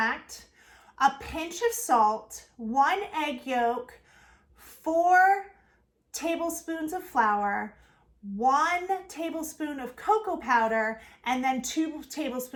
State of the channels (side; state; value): both; identical; correlation 1.00